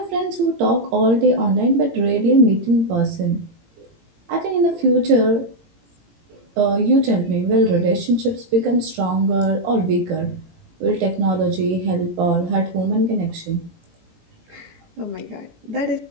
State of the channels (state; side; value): late; left; 18 ms